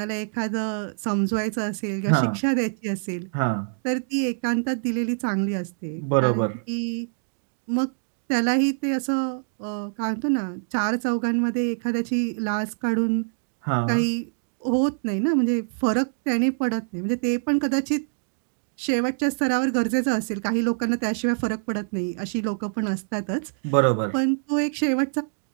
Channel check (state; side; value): silent; left; digital silence